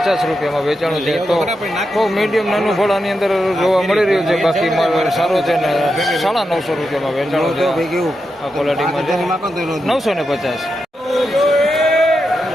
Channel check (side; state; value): both; normal; correlation 0.87